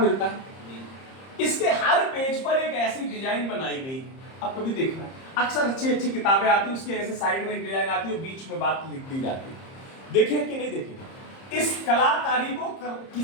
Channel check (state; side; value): late; right; 30 ms